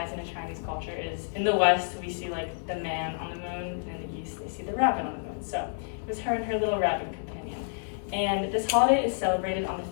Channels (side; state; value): right; silent; digital silence